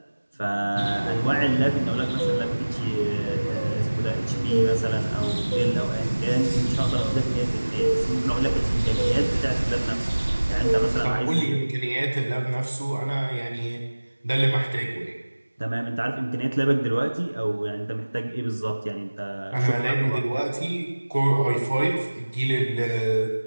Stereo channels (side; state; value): both; inverted; correlation -1.00